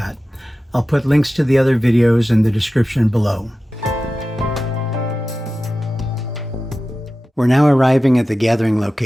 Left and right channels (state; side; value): normal; both; correlation 0.94